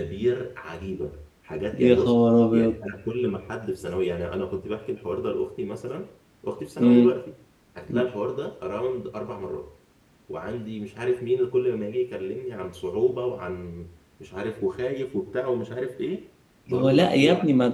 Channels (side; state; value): both; identical; correlation 1.00